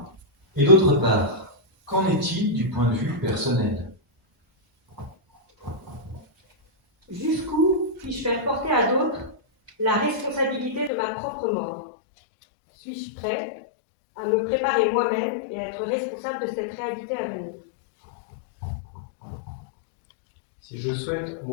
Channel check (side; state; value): right; drops out; at 10.9 s